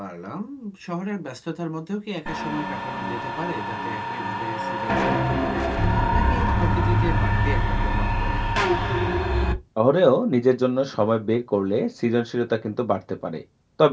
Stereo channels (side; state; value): both; identical; correlation 1.00